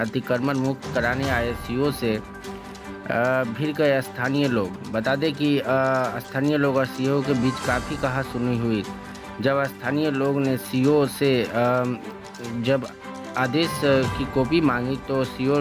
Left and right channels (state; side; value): identical; both; correlation 1.00